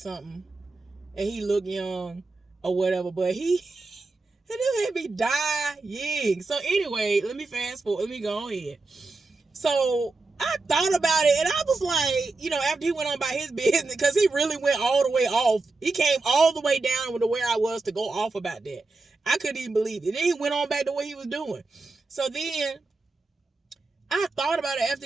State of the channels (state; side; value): quieter; left; 3.6 dB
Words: and he look young or whatever. But he had me dying. So anyway, let me fast forward. Let me go ahead. So I thought about it, and I was like, after he went on about his business, because he really went all the way off. He came all the way down to where I was to go off about that. I couldn't even believe it. Then he went on back to what he was doing. So then I thought about it after